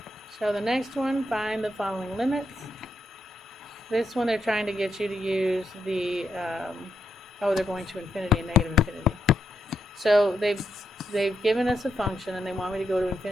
So the next one, find the following limits. This one they're trying to get you to use the, they're going to infinity and negative infinity. So they've given us a function and they want me to go to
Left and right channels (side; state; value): both; normal; correlation 0.82